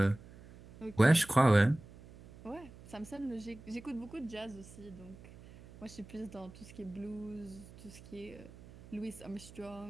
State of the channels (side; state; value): right; noise; hum, 19 dB below the sound